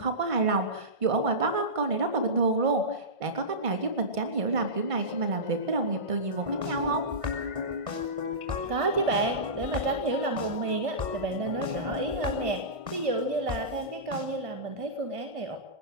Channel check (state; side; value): late; left; 1.5 ms